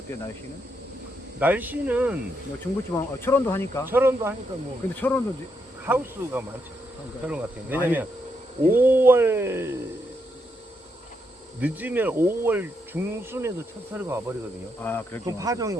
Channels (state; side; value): normal; both; correlation 0.80